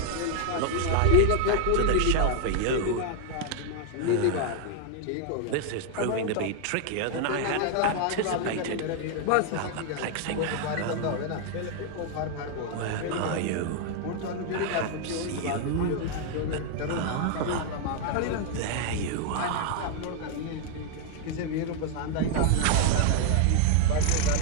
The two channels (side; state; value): both; different; correlation 0.00